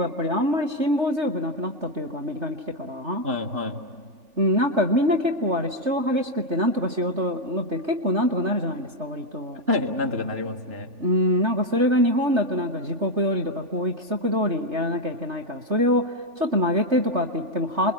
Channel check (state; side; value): late; left; 3.4 ms